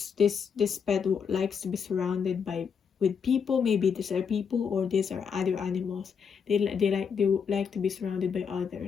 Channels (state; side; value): quieter; right; 6.6 dB